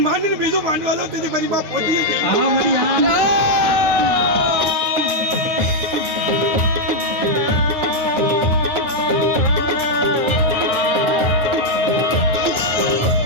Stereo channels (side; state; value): left; late; 9.3 ms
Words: માનીને બીજું માંડવા દઉં તેથી મારી માં પોતી આ મારી આ